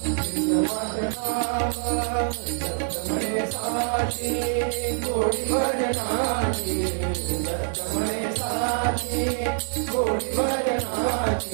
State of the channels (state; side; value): silent; left; digital silence